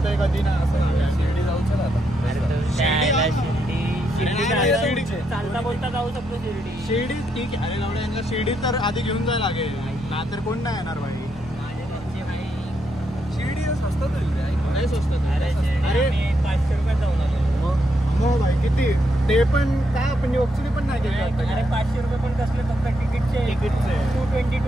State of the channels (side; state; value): both; normal; correlation 0.79